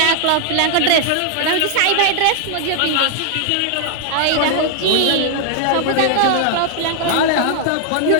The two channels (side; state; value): both; different; correlation 0.00